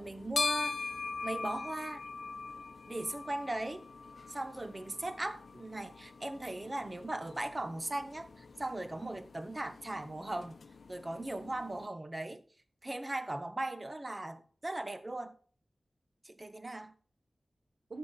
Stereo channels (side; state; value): both; normal; correlation 0.95